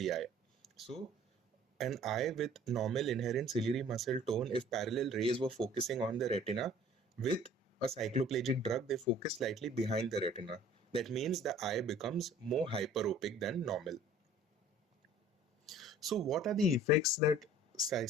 eye. So an eye with normal inherent ciliary muscle tone, if parallel rays were focusing on the retina, with a cycloplegic drug, they focus slightly behind the retina. That means the eye becomes more hyperopic than normal. So what are the effects that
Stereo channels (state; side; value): normal; both; correlation 0.50